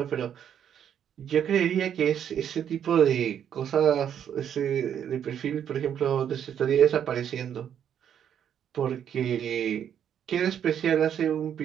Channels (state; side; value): quieter; left; 9.1 dB